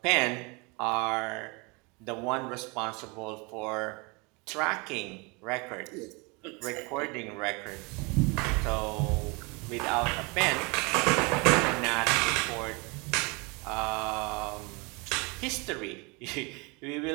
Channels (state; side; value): quieter; left; 29.0 dB